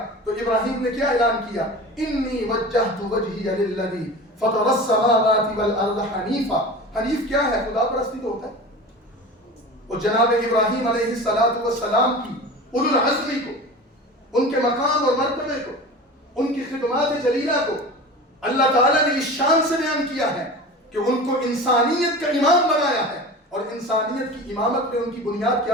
تو ابراہیم نے کیا اعلان کیا؟ انی وجہت وجہی للذی فطر السماوات والارض حنیفا. حنیف کیا ہے؟ خدا پرستی تو ہوتا ہے. اور جناب ابراہیم علیہ السلام کی اولو العزمی کو، ان کے مقام اور مرتبے کو، ان کی خدمات جلیلہ کو اللہ تعالیٰ نے اس شان سے بیان کیا ہے کہ ان کو انسانیت کا امام بنایا ہے. اور انسانیت کی امامت میں ان کی بنیاد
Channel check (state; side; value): normal; both; correlation 0.34